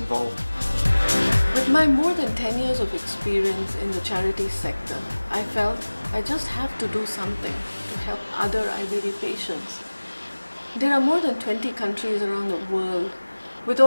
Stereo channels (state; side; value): inverted; both; correlation -1.00